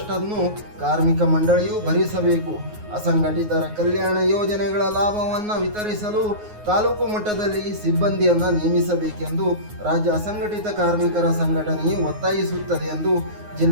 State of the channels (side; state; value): left; late; 9.5 ms